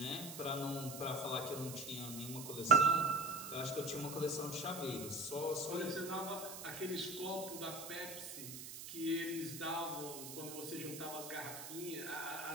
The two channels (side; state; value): right; noise; hiss, 9 dB below the sound